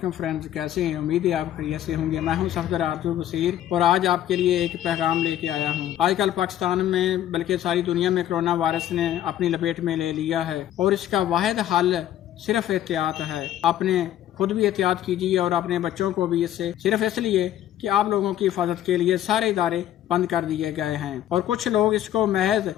فرینڈز، کیسے ہیں؟ امید ہے آپ خیریت سے ہوں گے۔ میں ہوں صفدر عبد البصیر اور آج آپ کے لیے ایک پیغام لے کے آیا ہوں۔ آج کل پاکستان میں بلکہ ساری دنیا میں کرونا وائرس نے اپنی لپیٹ میں لے لیا ہے اور اس کا واحد حل صرف احتیاط ہے۔ اپنے خود بھی احتیاط کیجیے اور اپنے بچوں کو بھی، اس سے صرف اس لیے کہ آپ لوگوں کی حفاظت کے لیے سارے ادارے بند کر دیے گئے ہیں اور کچھ لوگ اس کو محض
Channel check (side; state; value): right; quieter; 12.0 dB